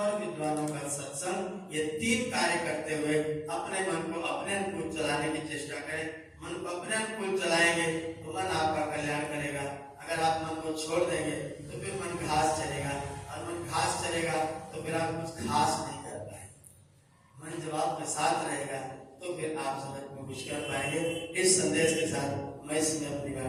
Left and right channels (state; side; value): identical; both; correlation 1.00